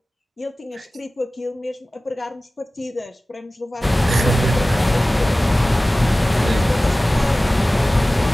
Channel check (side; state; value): both; normal; correlation 0.97